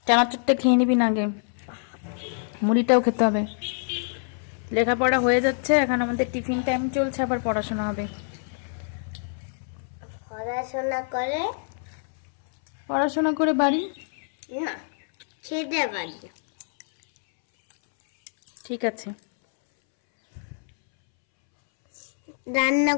চানাচুরটা খেয়ে নিবি না আগে, মুড়িটাও খেতে হবে। লেখাপড়া হয়ে যাচ্ছে, এখন আমাদের টিফিন টাইম চলছে, আবার পড়াশোনা হবে। পড়াশোনা করে বাড়ি না, খেতে পারি। ঠিক আছে, রান্না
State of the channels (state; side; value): silent; right; 61 dB below the other